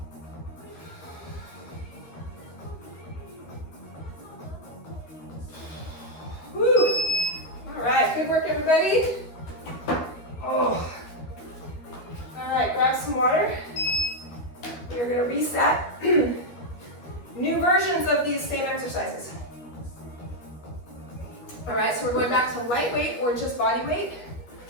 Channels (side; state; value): right; late; 12 ms